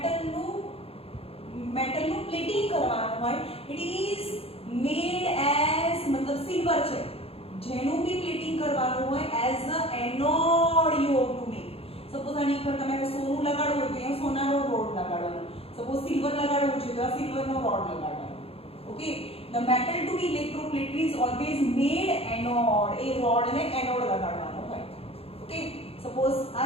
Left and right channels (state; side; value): late; right; 0.28 ms